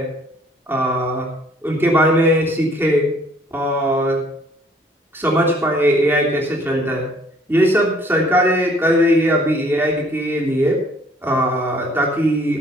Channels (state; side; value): normal; both; correlation 0.59